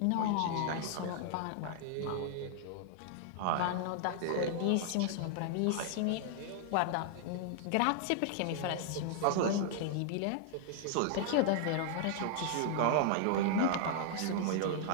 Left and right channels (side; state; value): both; different; correlation 0.00